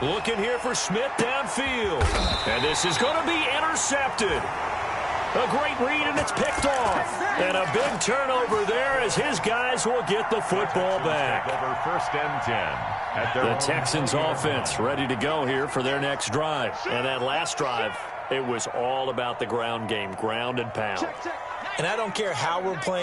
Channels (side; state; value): both; identical; correlation 1.00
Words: here for Smith downfield. And this is going to be intercepted. A great read, and it's picked off. And a big turnover there as his guys will get the football back. Over 1st and 10. The Texans offense ready to go here for their next drive. And that last drive, it was all about the ground game, ground and pound. And I don't care how we're